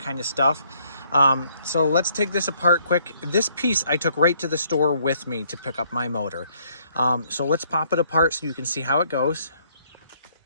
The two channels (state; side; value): inverted; both; correlation -0.66